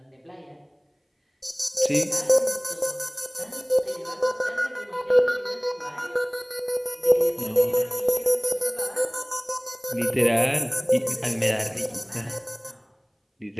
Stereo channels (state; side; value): identical; both; correlation 1.00